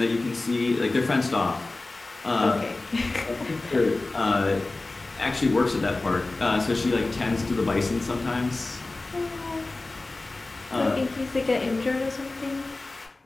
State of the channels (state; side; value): quieter; right; 3.2 dB